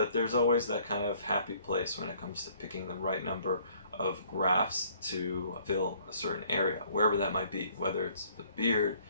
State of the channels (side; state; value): both; inverted; correlation -0.60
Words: there's always that kind of happy place when it comes to picking the right number of grafts to fill a certain area, wherever that might be, whether it's the beard,